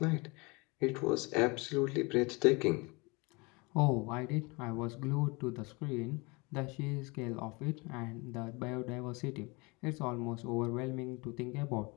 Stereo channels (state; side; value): quieter; right; 27.1 dB